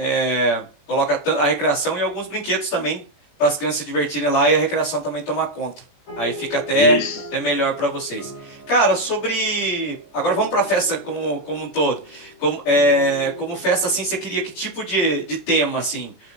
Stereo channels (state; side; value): late; right; 21 ms